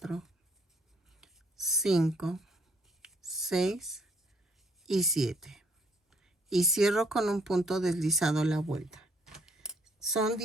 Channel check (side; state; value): both; normal; correlation 0.65